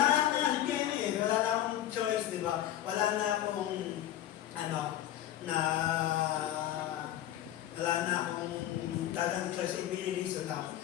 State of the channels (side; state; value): right; quieter; 12.2 dB